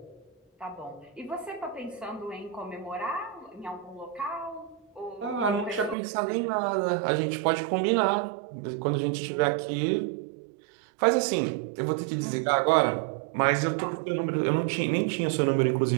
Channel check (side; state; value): left; drops out; at 6.0 s